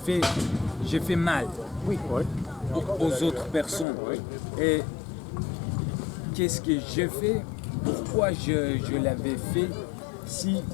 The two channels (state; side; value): drops out; right; at 3.9 s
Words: fait mal Oui. aux autres personnes. Et qu'est-ce que j'ai fait? Pourquoi je l'avais fait si